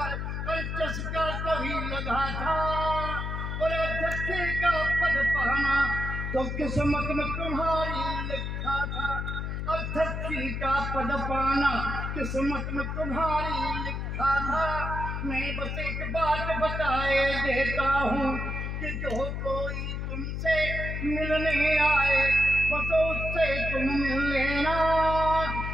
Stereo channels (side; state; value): left; noise; hum, 3 dB below the sound